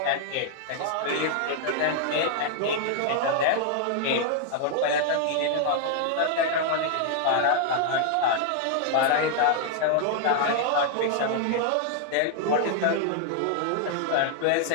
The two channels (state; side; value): different; both; correlation 0.00